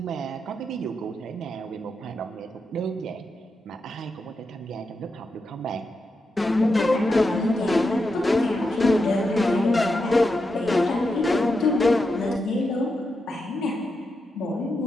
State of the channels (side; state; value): both; normal; correlation 0.86